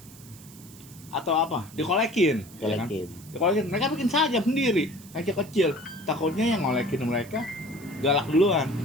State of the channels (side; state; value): right; noise; hiss, 21 dB below the sound